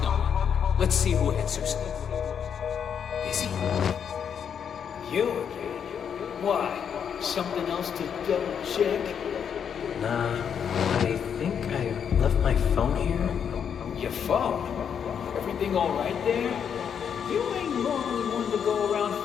number. Let's see who answers. Busy? You again? Why? Something else to double check? Nah, I think I left my phone here. Your phone? Everything all right there? You ain't normally one to go around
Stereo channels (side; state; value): right; quieter; 7.7 dB